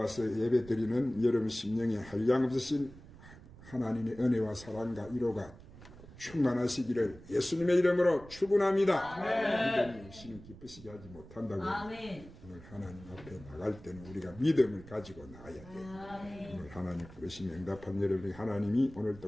예배드리는 여러분 심령에 한량없으신 하나님의 은혜와 사랑과 위로가 충만하시기를 예수님의 이름으로 축원합니다. 믿음이 없이는 기쁘시게 하지 못한다고. 오늘 하나님 앞에 나갈 때는 우리가 믿음을 가지고 나가야 돼요. 오늘 하나님 부르시면 응답한 여러분, 하나님이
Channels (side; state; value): right; noise; rumble, 18 dB below the sound